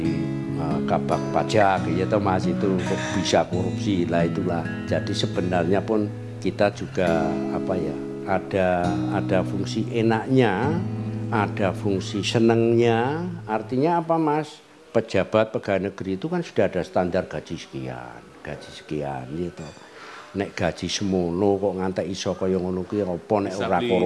kabak pajak gitu Mas itu kok bisa korupsi lah itulah. Jadi sebenarnya pun kita juga ada fungsi enaknya. Ada fungsi senengnya, artinya apa Mas? Pejabat pegawai negeri itu kan sudah ada standar gaji sekian gitu. Nek gaji semono kok ngantek iso kaya ngono kuwi apa nek ora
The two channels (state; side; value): identical; both; correlation 1.00